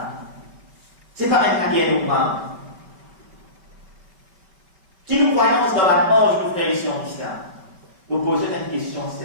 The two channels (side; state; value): left; late; 5.3 ms